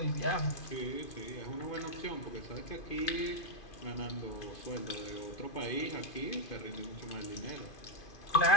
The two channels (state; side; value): late; right; 2.5 ms